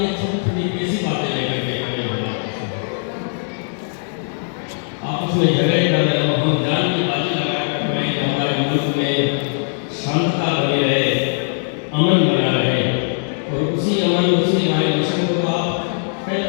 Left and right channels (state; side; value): silent; right; digital silence